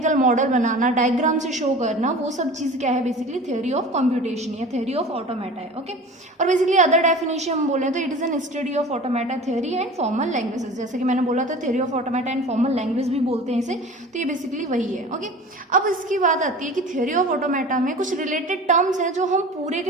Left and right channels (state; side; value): normal; both; correlation 0.39